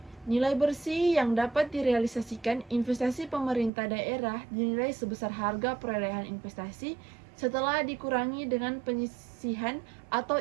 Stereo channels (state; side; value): drops out; left; at 3.7 s